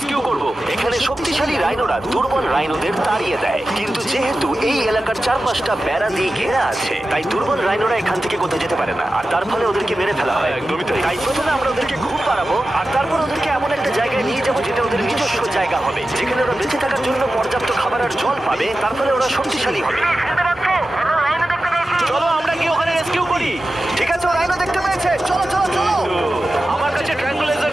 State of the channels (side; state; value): both; normal; correlation 0.93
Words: করব। এখানে শক্তিশালী রাইনোরা দুর্বল রাইনোদের তাড়িয়ে দেয়, কিন্তু যেহেতু এই এলাকার চারপাশটা বেড়া দিয়ে ঘেরা আছে, তাই দুর্বল রাইনোরা এখান থেকে কোথাও যেতে পারে না, আর তার ফলে ওদেরকে মেরে ফেলা হয়। একদমই তাই। তাই প্রথমে আমরা ওদেরকে ঘুম পাড়াবো, আর তারপর ওদেরকে এমন একটা জায়গায় নিয়ে যাবো যেটা ওদের নিজস্ব জায়গা হবে, যেখানে ওরা বেঁচে থাকার জন্য পর্যাপ্ত খাবার আর জল পাবে। তার ফলে ওরা শক্তিশালী হবে। চলো আমরা কি ওখানে রেস্কিউ করি? ঠিক আছে, ও রাইনো দেখতে পেয়েছে। চলো চলো চলো। আমার কাছে ট্রায়াঙ্গুলার